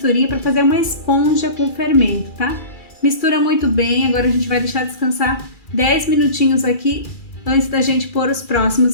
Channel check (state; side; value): late; right; 2.3 ms